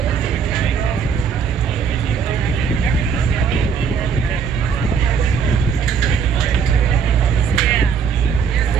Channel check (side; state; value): left; quieter; 6.5 dB